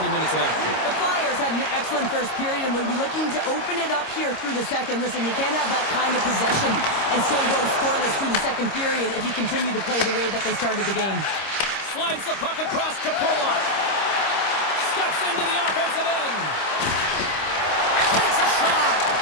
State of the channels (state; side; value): late; right; 26 ms